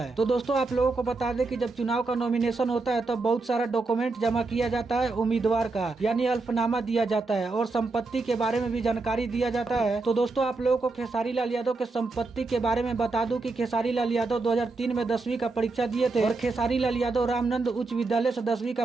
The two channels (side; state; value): left; quieter; 3.7 dB